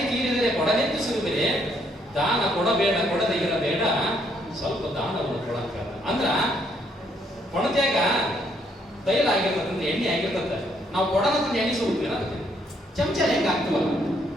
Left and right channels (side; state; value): both; normal; correlation 0.70